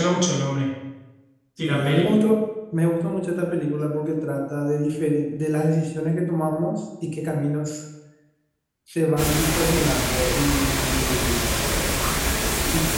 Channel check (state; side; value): identical; both; correlation 1.00